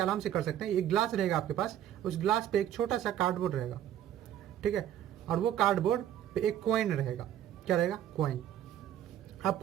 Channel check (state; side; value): quieter; left; 11.2 dB